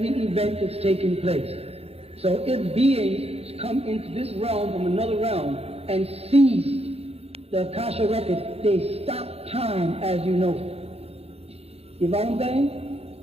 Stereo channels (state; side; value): late; left; 0.29 ms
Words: event that's taking place. So if beings come into this realm from another realm and seize the Akasha records, they stop time as you know. You follow what I'm saying?